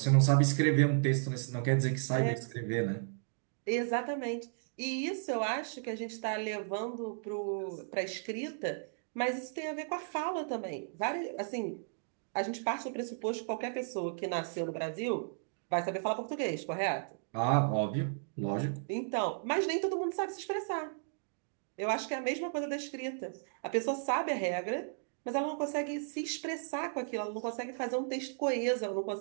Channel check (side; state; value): left; silent; digital silence